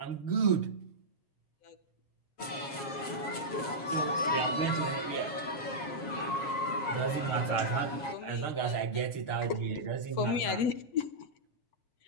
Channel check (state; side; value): late; right; 7.3 ms